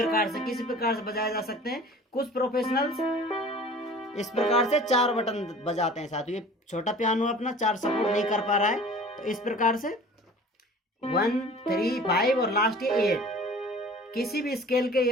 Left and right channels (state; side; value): normal; both; correlation 0.45